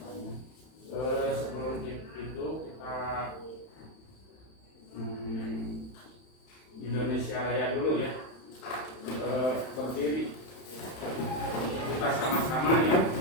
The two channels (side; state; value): right; late; 31 ms